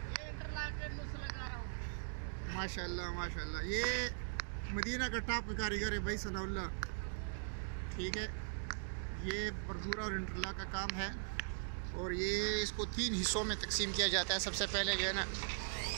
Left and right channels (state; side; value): silent; left; digital silence